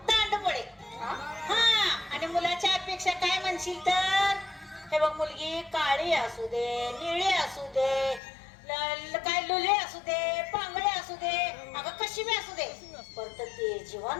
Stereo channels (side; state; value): right; drops out; at 8.2 s